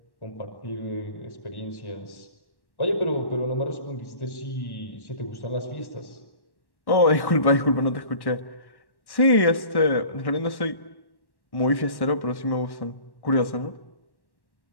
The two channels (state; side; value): late; right; 1.1 ms